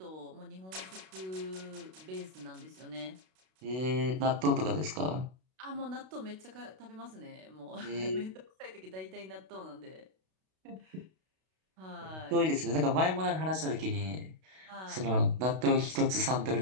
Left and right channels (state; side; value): late; left; 32 ms